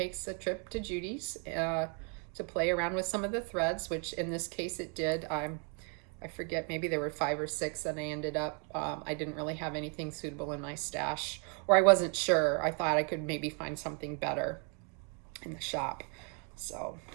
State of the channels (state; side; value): quieter; left; 38.5 dB